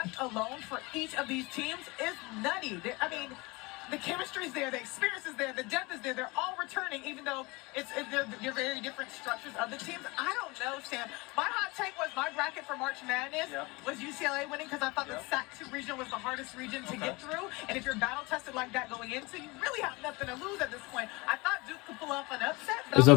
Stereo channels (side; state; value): right; quieter; 24.9 dB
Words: alone for each of these teams is nutty. I mean, the chemistry's there, the experience is there, the depth is there. They're all returning, even though they're very different structures of the teams. I don't know, Sam. My hot take was my bracket for March Madness was UCLA winning because I thought the SAC-2 region was the hardest region to get through. And if you're battle tested like that going into, you really have nothing to lose at this point. I thought Duke could pull off an upset. There's a